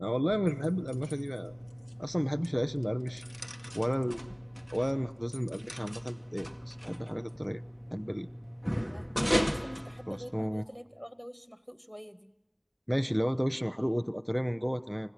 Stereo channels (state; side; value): identical; both; correlation 1.00